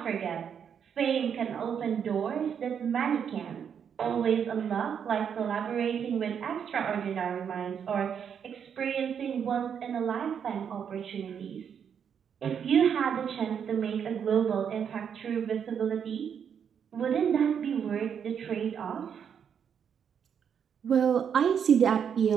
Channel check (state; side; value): quieter; left; 7.7 dB